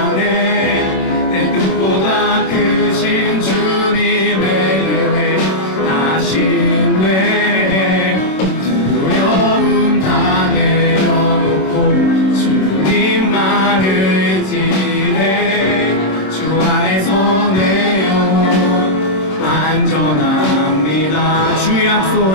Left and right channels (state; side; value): late; right; 26 ms